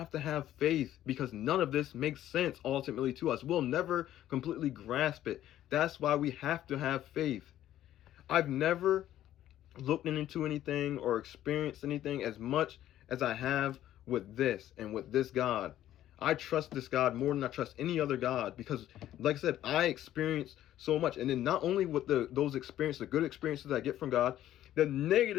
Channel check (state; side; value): quieter; right; 12.6 dB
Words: to have faith because none of this makes sense ultimately to us. We'll never completely grasp it. That's why we have to have faith. I've never looked into anything or experienced anything as much as I have with this and with this God. I trust this God more than I trust any other God because, like I said, I experience so much. And then not only with those experiences, the good experiences I get from God,